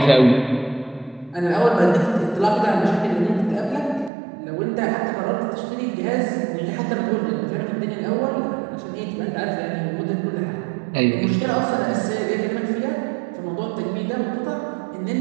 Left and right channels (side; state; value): left; drops out; at 4.1 s